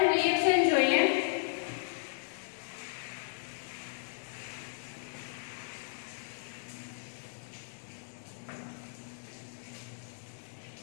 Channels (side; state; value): right; silent; digital silence